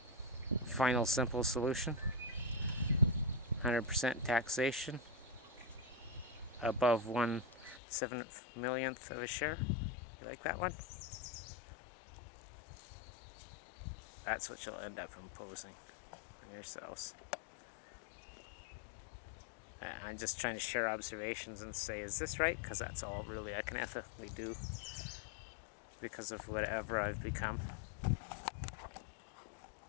final simple solution. 100% taxation above 1/7 millionth of a share. You like that one? That's what you'll end up imposing on yourselves. I'm just trying to share observations and say, is this right? Because that's all really I can ethically do because of whatever I've become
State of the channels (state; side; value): drops out; right; at 7.8 s